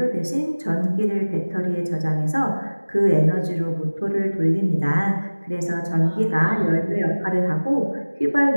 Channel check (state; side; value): inverted; both; correlation -1.00